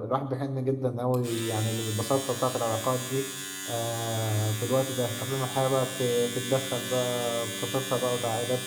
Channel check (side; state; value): both; identical; correlation 1.00